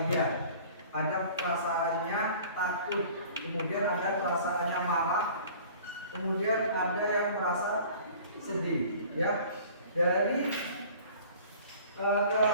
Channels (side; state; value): both; inverted; correlation -0.47